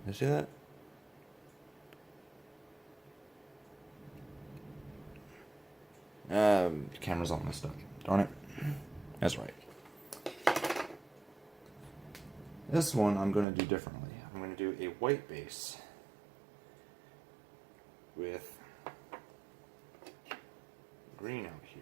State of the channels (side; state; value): left; drops out; at 13.5 s